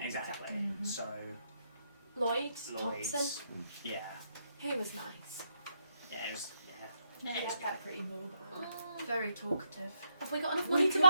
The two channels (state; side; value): inverted; both; correlation -0.76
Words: Exactly. Mhm. So, Lloyd's Lloyd's. Thompson. Yeah. He was nice. Yeah, it was. Yeah, Yeah, it's it's got pretty mobile. Very talkative. Have we got enough We money to could